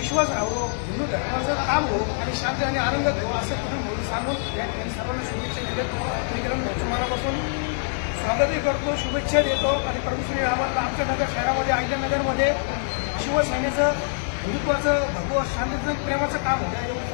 राहावं, हिंदू धर्माचं काम हो आणि शांती आणि आनंद हो असं किरण भाऊ सांगून या ठिकाणी सर्वांना शुभेच्छा देतो। मी किरण भाऊचं मनापासून स्वागतही करतो, शुभेच्छा देतो आणि प्रभू श्री रामांना आमच्या नगर शहरामध्ये, अहिल्यानगरमध्ये शिवसेनेचं हिंदुत्वाचं, भगवत शांतीचं, प्रेमाचं काम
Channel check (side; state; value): right; silent; digital silence